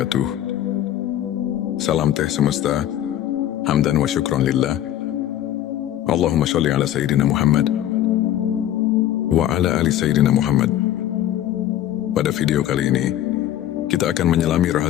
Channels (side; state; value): right; quieter; 12.1 dB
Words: Salam teh semesta, hamdan wa syukron lillah. Allahumma sholli ala Sayyidina Muhammad wa ala ali Sayyidina Muhammad. Pada video kali ini, kita akan menyelami